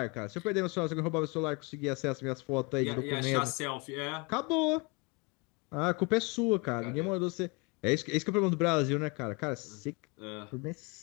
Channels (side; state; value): right; quieter; 29.1 dB